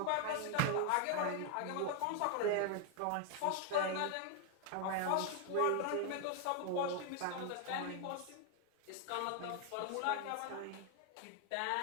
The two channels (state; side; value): different; both; correlation 0.00